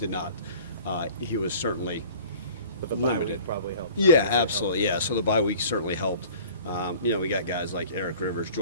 not. He was certainly. But the bye week probably helped. Yeah, absolutely. Yeah, so the bye week certainly helped. We got guys like Eric Rivers,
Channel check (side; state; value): both; inverted; correlation -0.47